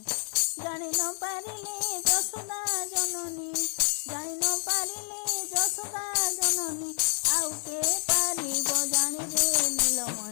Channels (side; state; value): right; silent; digital silence